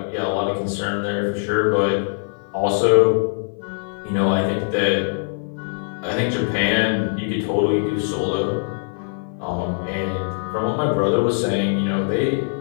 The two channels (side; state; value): right; silent; 57 dB below the other